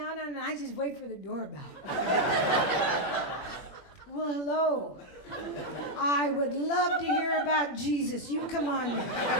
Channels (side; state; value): right; late; 21 ms